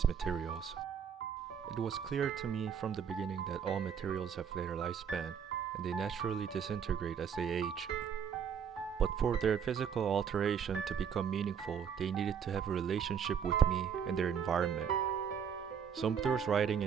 materials. It was clear to me from the beginning that all materials have their lifespan, and they naturally disintegrate as they age. But for their physical alteration to become meaningful, they needed to have a relationship with me and their environment. Sumter's writing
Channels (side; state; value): left; quieter; 7.5 dB